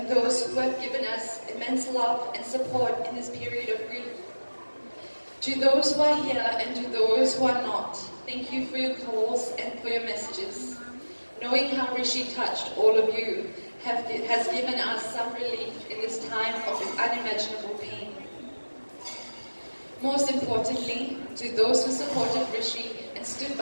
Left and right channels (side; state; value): both; inverted; correlation -1.00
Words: those who have given us immense love and support in this period of grief. To those who are here and to those who are not, thank you for your calls and for your messages. Knowing how Rishi touched all of you has given us some relief in this time of unimaginable pain. Most importantly, to those who supported Rishi and stood